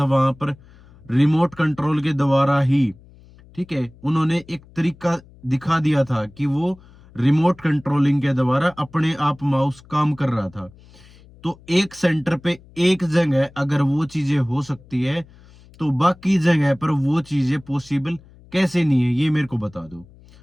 वहां पर रिमोट कंट्रोल के द्वारा ही, ठीक है, उन्होंने एक तरीका दिखा दिया था कि वो रिमोट कंट्रोलिंग के द्वारा अपने आप माउस काम कर रहा था। तो एक सेंटर पे एक जगह अगर वो चीजें हो सकती है, तो बाकी जगह पर वो चीजें पॉसिबल कैसे नहीं है, ये मेरे को बता दो।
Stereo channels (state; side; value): noise; left; hum, 25 dB below the sound